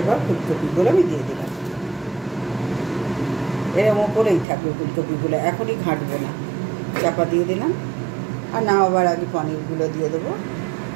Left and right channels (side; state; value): left; drops out; at 4.5 s